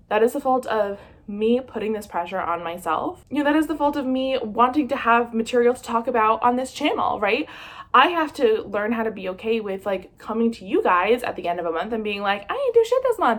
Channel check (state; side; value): identical; both; correlation 1.00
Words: That is the fault of me putting this pressure on myself. You know, that is the fault of me wanting to have material to talk about on this channel, right? I have to learn how to be okay with like coming to you guys at the end of a month and being like, I didn't do shit this